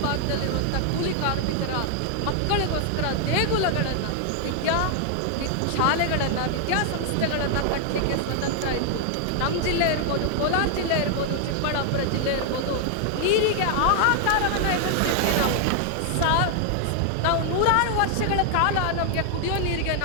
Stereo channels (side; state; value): both; different; correlation 0.00